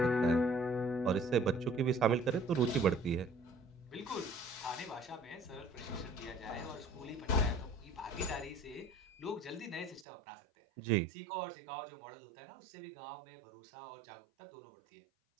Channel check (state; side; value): drops out; left; at 10.1 s